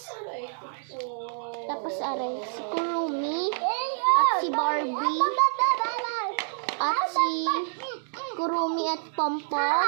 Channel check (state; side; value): silent; left; digital silence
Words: Tapos, are, si Kurumi. At si Barbie. At si Kurumi at